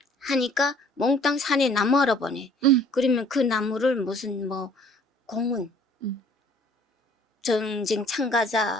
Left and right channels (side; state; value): both; normal; correlation 0.56